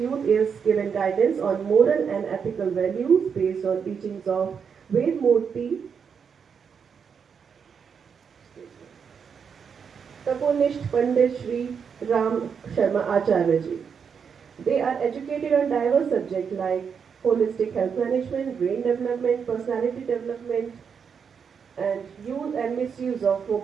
is given guidance on moral and ethical values based on teachings of Ved Murti, Taponist Pandit Shri Ram Sharma Acharya Ji. They are educated on diverse subjects like holistic health management, brain development, personality development, and use and misuse of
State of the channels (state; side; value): quieter; left; 6.6 dB